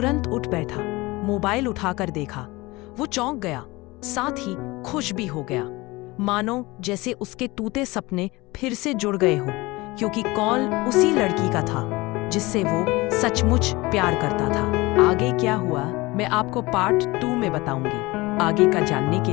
उठ बैठा, मोबाइल उठाकर देखा। वो चौंक गया, साथ ही खुश भी हो गया, मानो जैसे उसके टूटे सपने फिर से जुड़ गए हो, क्योंकि कॉल उसी लड़की का था जिससे वो सचमुच प्यार करता था। आगे क्या हुआ मैं आपको पार्ट 2 में बताऊंगी। आगे का जानने के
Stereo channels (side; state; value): right; quieter; 21.9 dB